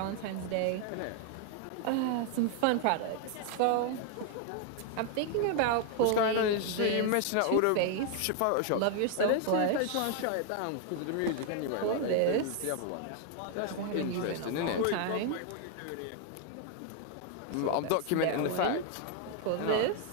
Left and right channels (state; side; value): different; both; correlation 0.00